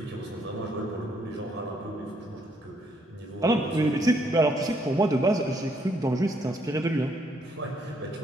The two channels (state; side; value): normal; both; correlation 0.71